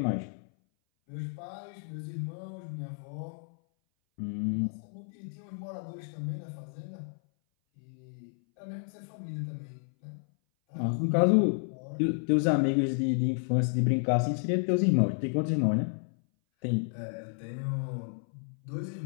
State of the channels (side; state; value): right; silent; 57 dB below the other